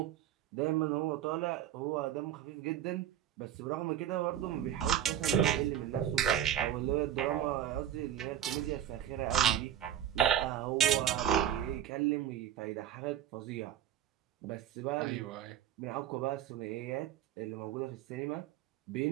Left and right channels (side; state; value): left; quieter; 10.6 dB